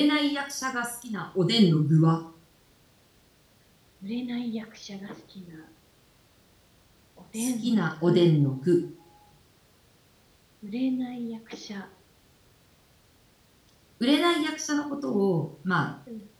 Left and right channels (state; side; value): identical; both; correlation 1.00